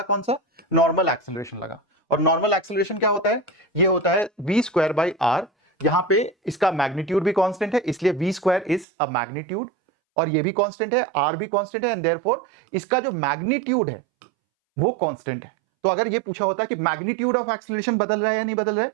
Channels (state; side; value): drops out; left; at 8.8 s